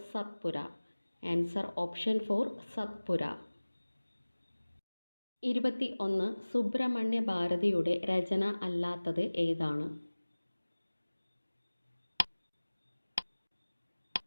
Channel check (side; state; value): both; inverted; correlation -1.00